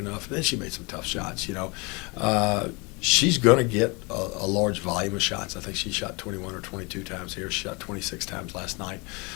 And then she made some tough shots, She's going to get a large volume of shots. I think she shot 21 or 22 times here. She shot 26 times last night.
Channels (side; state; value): right; quieter; 28.7 dB